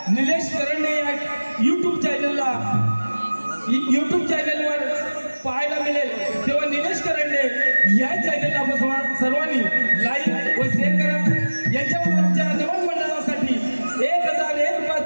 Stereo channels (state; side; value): inverted; both; correlation -1.00